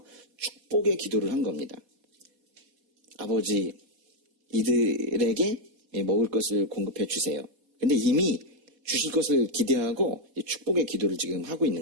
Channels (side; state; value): left; late; 4.2 ms